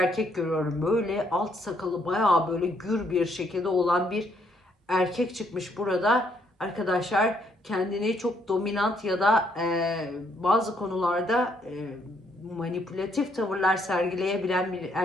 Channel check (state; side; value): normal; both; correlation 0.71